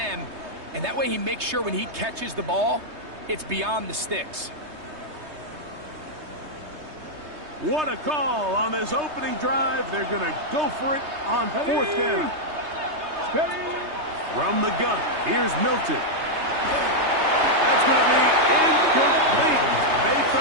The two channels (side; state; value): left; late; 3.3 ms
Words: and that way he makes sure when he catches the ball, it's beyond the sticks. What a call on this opening drive. They're going to go for it on 4th down. From the gun, here's Milton. That's going to be incomplete. They